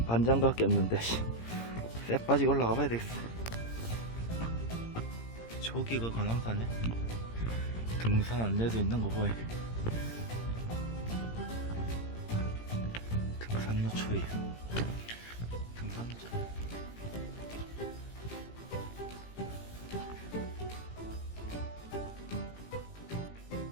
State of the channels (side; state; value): right; late; 17 ms